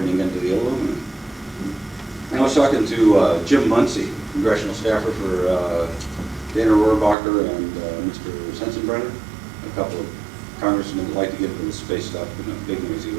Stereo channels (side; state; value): left; drops out; at 7.2 s